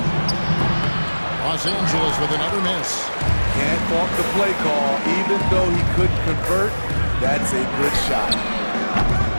Los Angeles with another miss. Can't fault the play call. Even though he couldn't convert, that's a good shot.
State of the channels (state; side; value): inverted; both; correlation -1.00